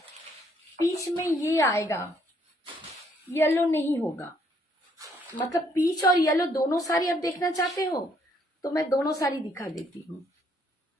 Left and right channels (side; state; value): both; normal; correlation 0.68